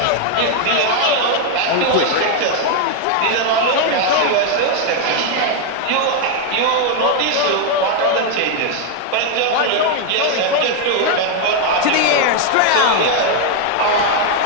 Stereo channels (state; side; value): different; both; correlation 0.01